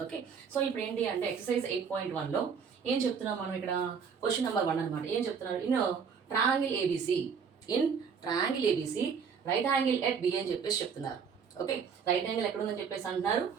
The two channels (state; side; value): quieter; left; 6.4 dB